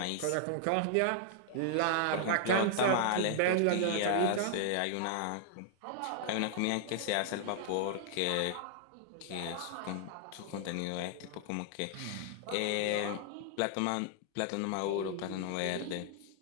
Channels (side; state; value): both; different; correlation -0.01